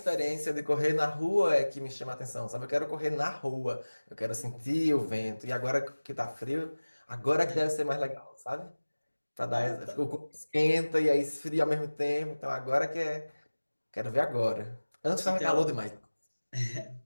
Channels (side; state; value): both; inverted; correlation -1.00